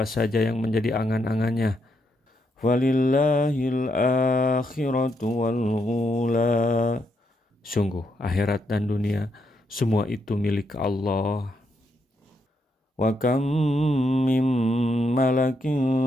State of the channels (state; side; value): normal; both; correlation 0.79